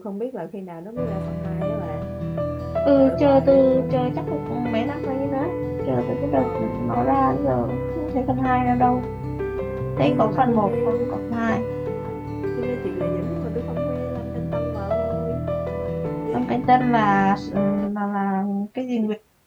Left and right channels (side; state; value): both; identical; correlation 1.00